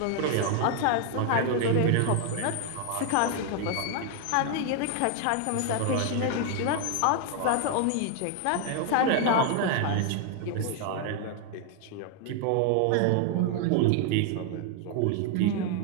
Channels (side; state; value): both; different; correlation 0.00